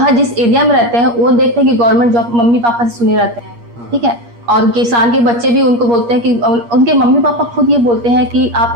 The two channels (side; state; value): left; late; 8.5 ms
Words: जिस एरिया में रहते हैं वो देखते हैं कि गवर्नमेंट जॉब मम्मी पापा से सुने रहते हैं। ठीक है, और किसान के बच्चे भी उनको बोलते हैं कि उनके मम्मी पापा खुद ये बोलते हैं कि आप